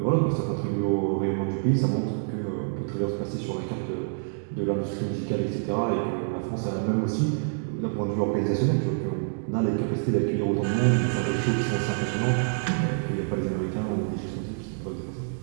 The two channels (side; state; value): left; silent; digital silence